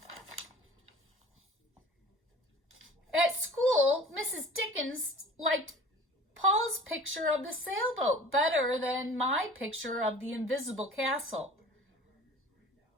At school, Mrs. Dickens liked Paul's picture of the sailboat better than my picture of the invisible castle.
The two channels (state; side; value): normal; both; correlation 0.44